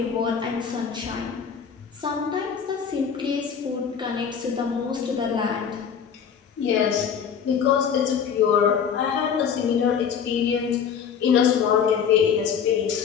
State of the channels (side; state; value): right; quieter; 7.2 dB